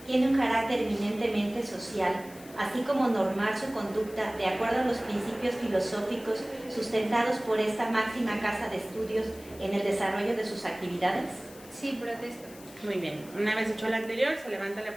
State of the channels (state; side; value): noise; left; hiss, 20 dB below the sound